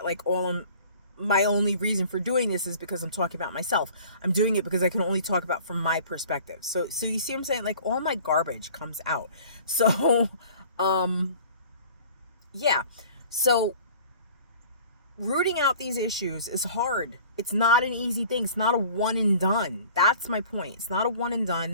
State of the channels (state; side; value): inverted; both; correlation -0.48